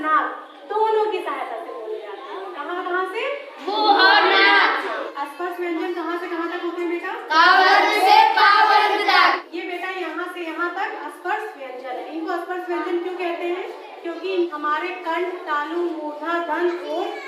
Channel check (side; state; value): both; identical; correlation 1.00